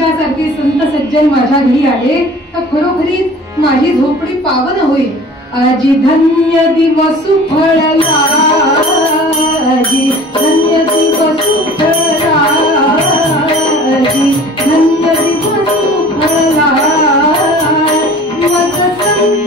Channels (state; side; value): normal; both; correlation 0.45